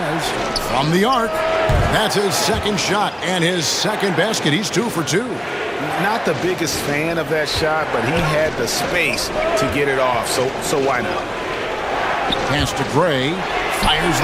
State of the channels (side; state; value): both; identical; correlation 1.00